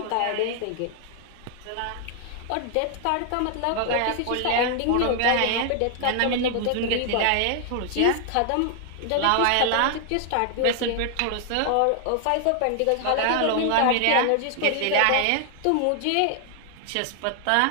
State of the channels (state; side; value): different; both; correlation 0.00